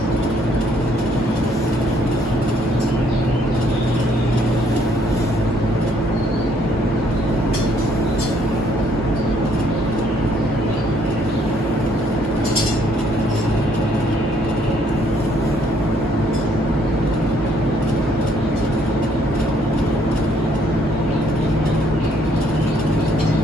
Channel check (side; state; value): both; normal; correlation 0.66